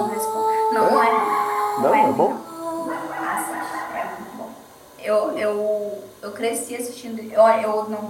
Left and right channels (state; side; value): identical; both; correlation 1.00